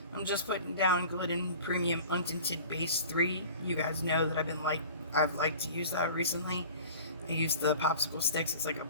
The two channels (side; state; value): both; inverted; correlation -0.42